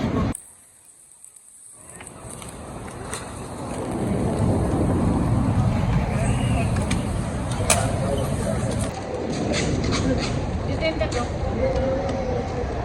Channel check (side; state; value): both; identical; correlation 1.00